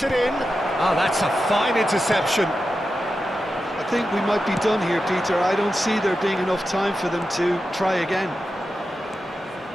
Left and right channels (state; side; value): normal; both; correlation 0.91